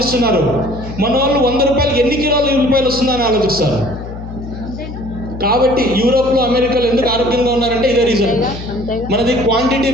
మన వాళ్ళు 100 రూపాయలకి ఎన్ని కిలోల ఉల్లిపాయలు వస్తుందని ఆలోచిస్తారు. కాబట్టి యూరోప్లో, అమెరికాలో ఎందుకు ఆరోగ్యంగా ఉన్నారంటే ఇదే రీజన్. మనది క్వాంటిటీ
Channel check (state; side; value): noise; left; hum, 11 dB below the sound